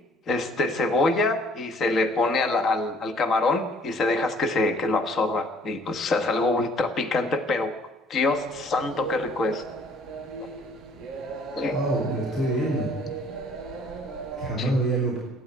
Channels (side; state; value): both; normal; correlation 0.58